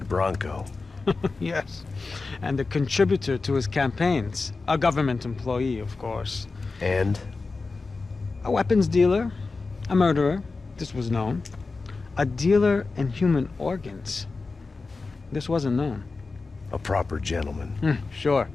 Yes. And a contributor to his campaigns. A government employee, of course. And? A weapons dealer. A murderer. This was known. A dealer in human organs. This wasn't known. A proper gentleman. Sure.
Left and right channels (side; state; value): right; quieter; 3.9 dB